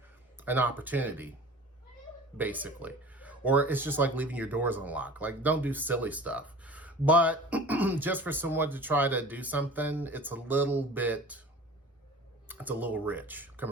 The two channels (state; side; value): normal; both; correlation 0.40